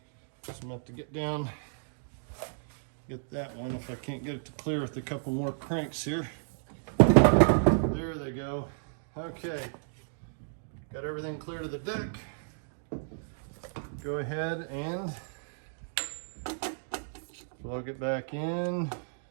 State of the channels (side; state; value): left; silent; digital silence